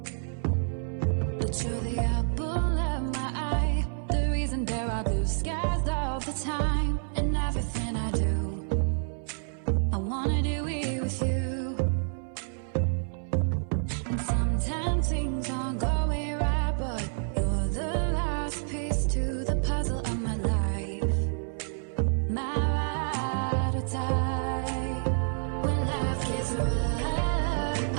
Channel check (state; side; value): silent; left; 59 dB below the other